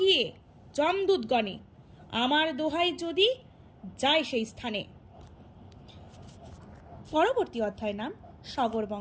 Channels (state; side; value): identical; both; correlation 1.00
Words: যমদূতগণে, আমার দোহাই যদি যায় সেই স্থানে। পরবর্তী অধ্যায় নাম সগর